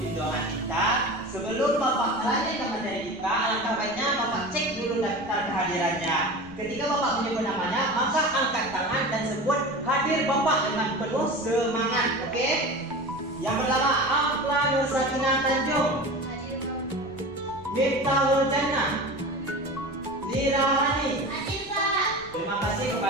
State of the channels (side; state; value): right; noise; rumble, 21 dB below the sound